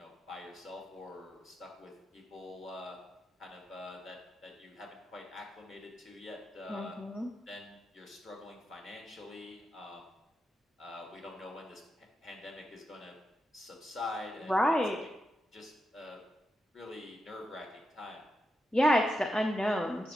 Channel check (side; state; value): both; normal; correlation 0.87